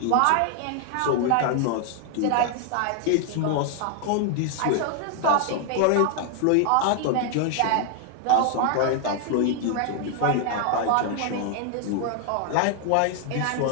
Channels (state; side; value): different; both; correlation 0.00